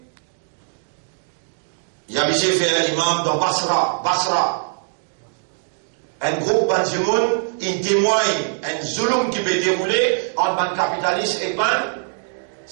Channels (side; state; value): left; silent; 64 dB below the other